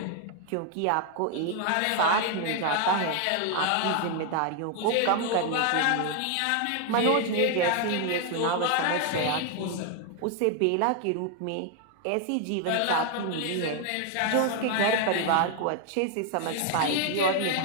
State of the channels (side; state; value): both; different; correlation 0.00